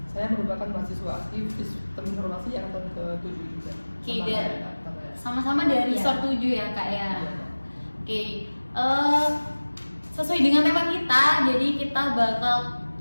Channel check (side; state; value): both; inverted; correlation -1.00